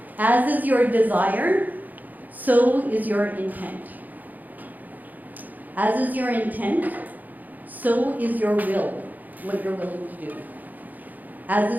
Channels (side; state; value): left; late; 0.083 ms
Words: As is your desire, so is your intent. As is your intent, so is your will, what you're willing to do. As